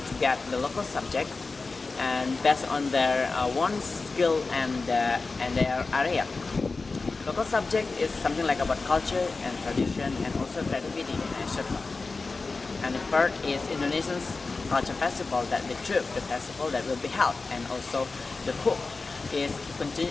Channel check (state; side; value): quieter; right; 3.9 dB